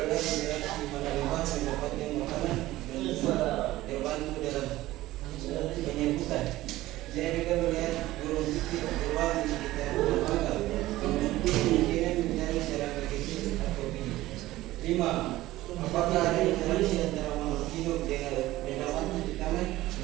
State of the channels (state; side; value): quieter; left; 16.6 dB